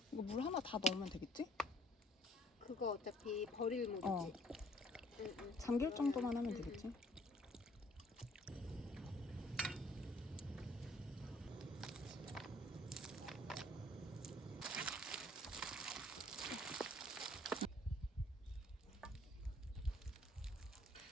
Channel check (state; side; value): normal; both; correlation 0.61